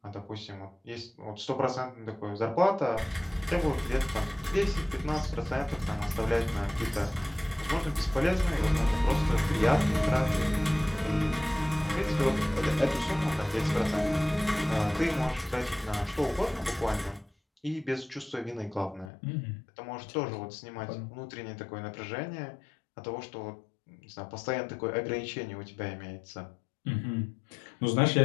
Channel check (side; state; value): right; drops out; at 19.1 s